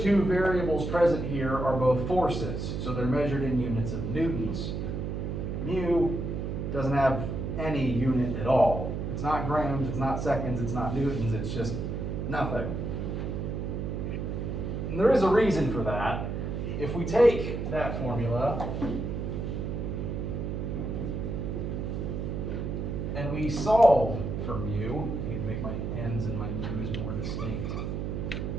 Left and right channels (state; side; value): noise; right; hum, 3 dB below the sound